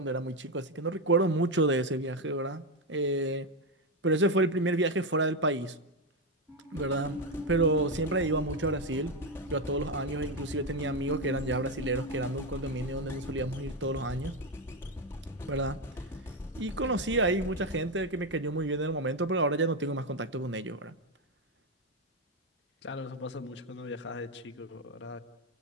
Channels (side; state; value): both; normal; correlation 0.09